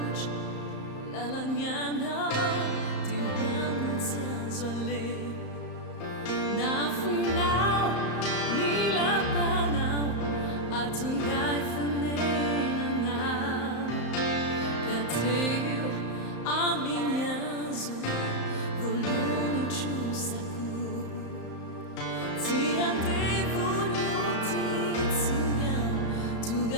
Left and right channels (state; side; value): late; right; 34 ms